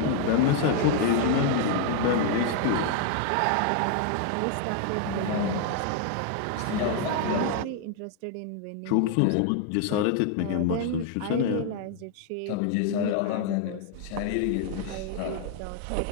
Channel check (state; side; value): different; both; correlation 0.00